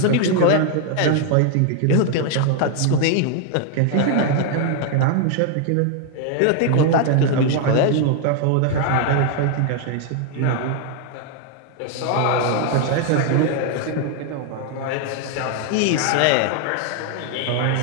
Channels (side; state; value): both; different; correlation 0.00